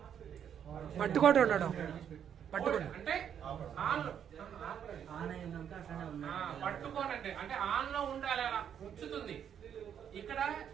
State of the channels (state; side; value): quieter; left; 8.7 dB